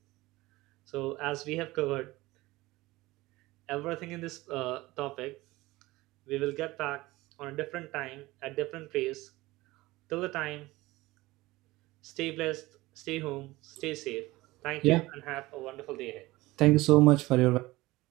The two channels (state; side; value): quieter; left; 19.6 dB